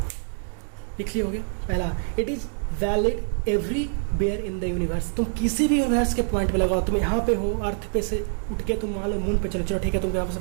लिख ली होगी। पहला, it is valid everywhere in the universe. तुम किसी भी यूनिवर्स के पॉइंट पे लगाओ, तुम यहाँ पे हो, अर्थ पे से उठ के तुम मान लो मून पे चलो, चलो ठीक है, तुम यहाँ से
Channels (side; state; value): left; silent; 61 dB below the other